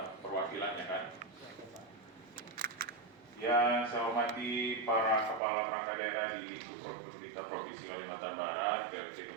perwakilannya kan. Yang saya hormati para kepala perangkat daerah di pemerintah Provinsi Kalimantan Barat, PLT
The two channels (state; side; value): drops out; left; at 5.4 s